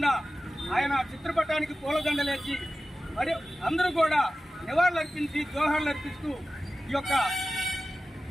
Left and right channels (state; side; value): normal; both; correlation 0.94